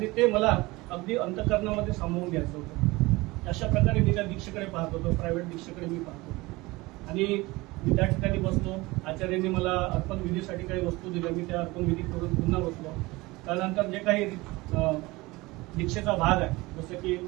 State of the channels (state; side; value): quieter; left; 21.8 dB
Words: ते मला अगदी अंतःकरणामध्ये सामावून घ्यायचं होतं. अशा प्रकारे मी त्या दीक्षेकडे पाहत होतो, प्रायव्हेट दीक्षेकडे मी पाहत होतो. आणि मी त्या ठिकाणी बसलो. आचार्यांनी मला अर्पण विधीसाठी काही वस्तू दिल्या, मी त्या अर्पण विधी करून पुन्हा बसलो. त्यानंतर जे काही दीक्षेचा भाग आहे, जसं की